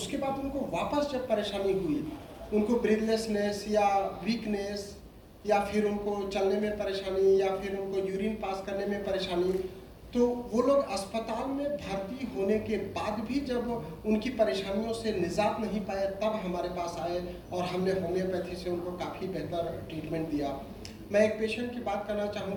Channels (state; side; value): identical; both; correlation 1.00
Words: बाद उनको वापस जब परेशानी हुई, उनको ब्रीथलेसनेस या वीकनेस या फिर उनको चलने में परेशानी या फिर उनको यूरिन पास करने में परेशानी, तो वो लोग अस्पताल में भर्ती होने के बाद भी जब उनकी परेशानियों से निजात नहीं पाए तब हमारे पास आए और हमने होम्योपैथी से उनको काफ़ी बेहतर ट्रीटमेंट दिया। मैं एक पेशेंट की बात करना